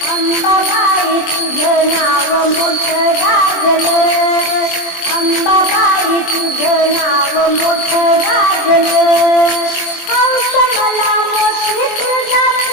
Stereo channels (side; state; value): right; late; 23 ms